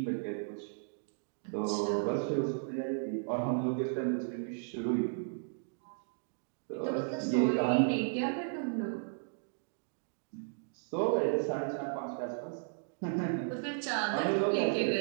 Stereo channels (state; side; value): silent; left; digital silence